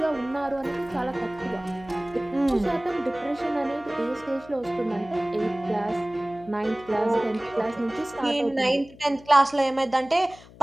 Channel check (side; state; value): left; noise; hum, 21 dB below the sound